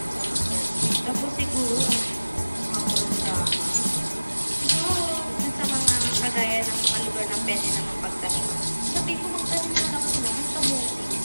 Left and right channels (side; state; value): both; inverted; correlation -1.00